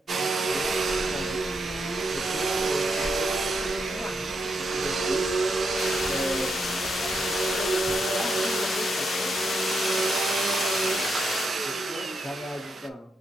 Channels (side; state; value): both; normal; correlation 0.82